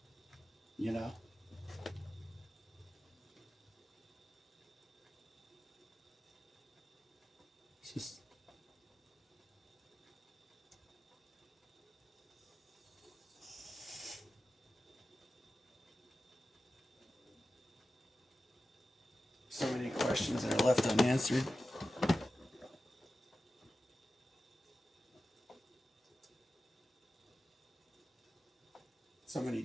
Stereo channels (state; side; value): normal; both; correlation 0.94